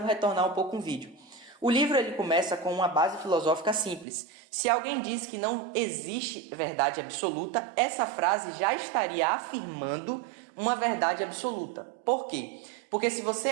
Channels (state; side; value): drops out; left; at 4.0 s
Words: retornar um pouco o vídeo. O livro ele começa com uma base filosófica simples. Se alguém diz que não existe verdade absoluta, essa frase já estaria afirmando uma verdade absoluta. Por quê? Porque se você